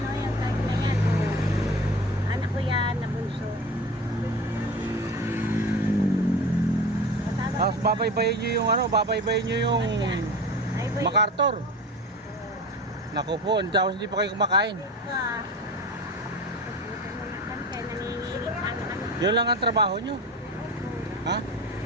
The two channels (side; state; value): both; normal; correlation 0.32